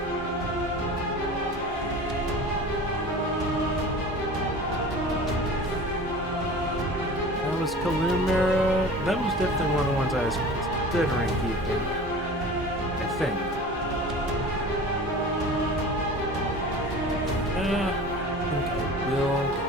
That was Kalumera. That was definitely one of the ones I was considering keeping, I think. I think I will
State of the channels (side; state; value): both; normal; correlation 0.38